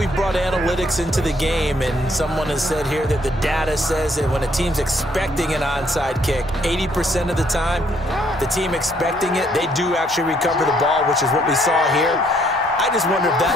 brought analytics into the game, and someone has said here that the data says that when a team's expecting an onside kick, 80% of the time, the team expecting it, they do actually recover the ball, which is what we saw here. I just wonder if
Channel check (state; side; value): normal; both; correlation 0.68